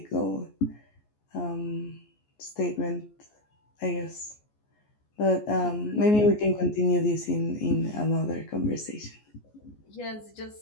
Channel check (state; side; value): late; right; 14 ms